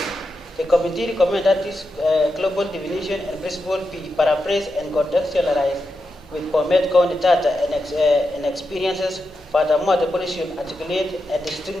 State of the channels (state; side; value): normal; both; correlation 0.87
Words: The committee recommends that this global definition and principle be paraphrased and contextualized with BOMET County data and experiences. Furthermore, the policy should articulate a